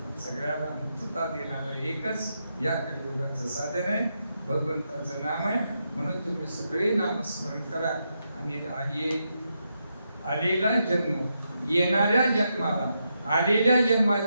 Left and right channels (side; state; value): both; inverted; correlation -0.83